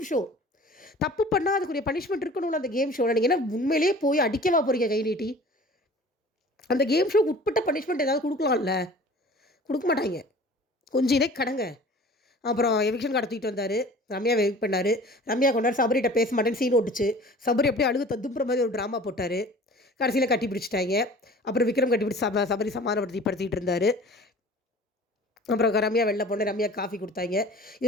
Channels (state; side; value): normal; both; correlation 0.44